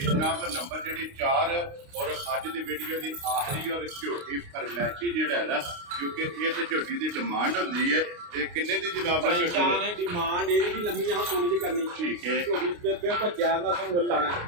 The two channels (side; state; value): left; late; 29 ms